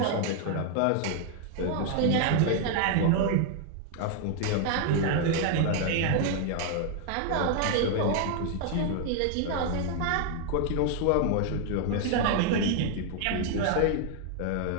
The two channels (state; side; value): different; both; correlation 0.00